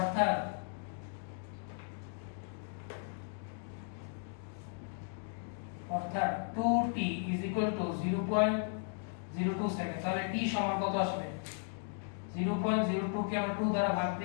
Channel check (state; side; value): silent; right; 54 dB below the other